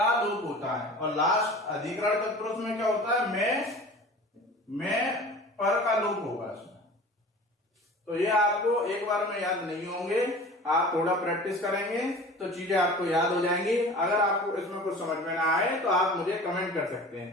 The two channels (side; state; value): both; normal; correlation 0.40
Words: लोप होता है। और लास्ट अधिकरण तत्पुरुष में क्या होता है, मैं पर का लोप होगा इसमें। तो ये आपको एक बार में याद नहीं होंगे, आप थोड़ा प्रैक्टिस करेंगे तो चीजें आपको याद हो जाएंगी। अगर आपको इसमें कुछ समझ में ना आए तो आप मुझे कमेंट कर सकते